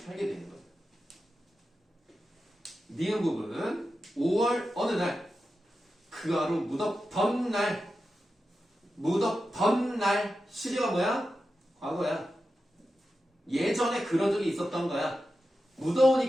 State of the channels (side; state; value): both; normal; correlation 0.91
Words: 되는 거예요. 니은 부분 5월 어느 날 그 하루 무덥던 날 무덥던 날 시제가 뭐야? 과거야. 예전에 그런 적이 있었던 거야.